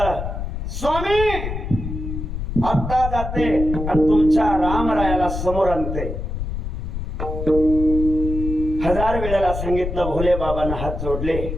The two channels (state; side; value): noise; left; rumble, 5 dB below the sound